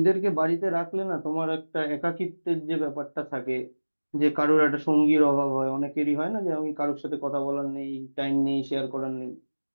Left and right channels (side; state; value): both; inverted; correlation -1.00